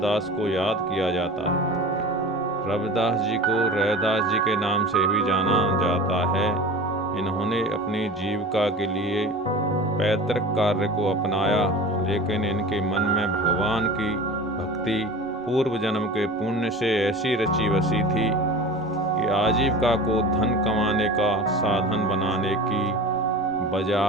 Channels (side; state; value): both; normal; correlation 0.36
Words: को याद किया जाता है। रविदास जी को रैदास जी के नाम से भी जाना जाता है। इन्होंने अपनी जीविका के लिए पैतृक कार्य को अपनाया, लेकिन इनके मन में भगवान की भक्ति पूर्व जन्म के पुण्य से ऐसी रची बसी थी कि आजीविका को धन कमाने का साधन बनाने की